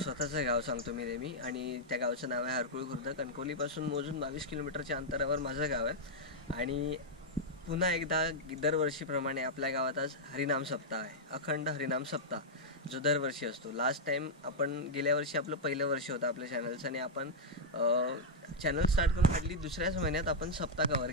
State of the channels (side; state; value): both; normal; correlation -0.05